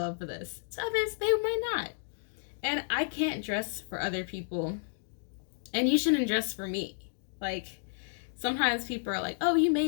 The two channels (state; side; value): silent; right; digital silence